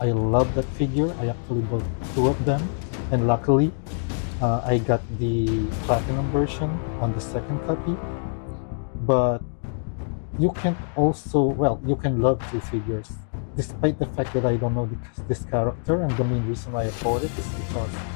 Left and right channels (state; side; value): silent; right; digital silence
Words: love that figure. I actually bought two of them, and luckily, I got the platinum version on the second copy. But you can also, well, you can love two figures, despite the fact that I don't know this character, and the main reason why I bought it is because,